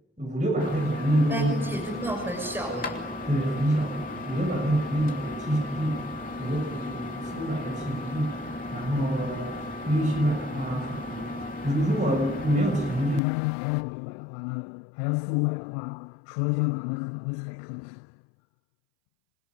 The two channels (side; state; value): right; drops out; at 13.2 s